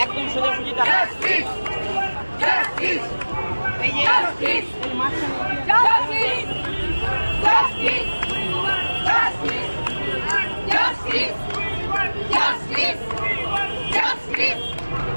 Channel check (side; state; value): both; inverted; correlation -1.00